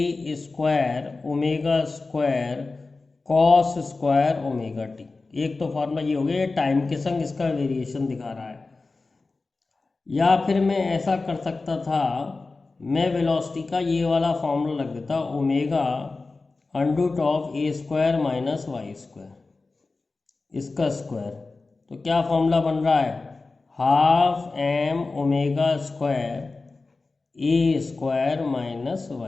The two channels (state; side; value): quieter; right; 3.7 dB